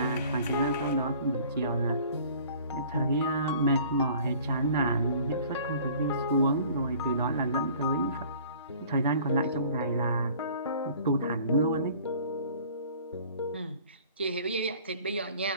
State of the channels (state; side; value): inverted; both; correlation -0.51